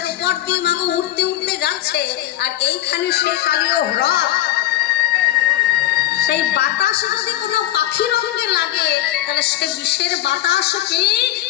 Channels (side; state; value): right; quieter; 14.2 dB